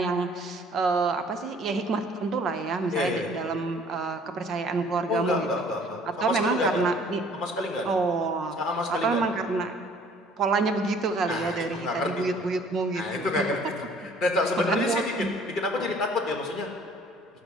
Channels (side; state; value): both; normal; correlation 0.55